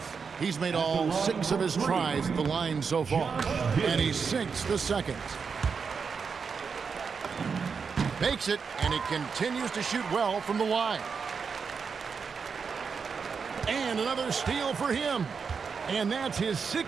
He's made all 6 of his tries at the line so far, and he sinks the second. Makes it, and he continues to shoot well from the line. And another steal for him. And that's his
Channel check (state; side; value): quieter; left; 5.7 dB